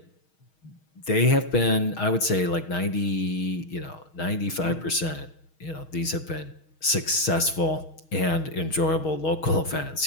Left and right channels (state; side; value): late; right; 6.4 ms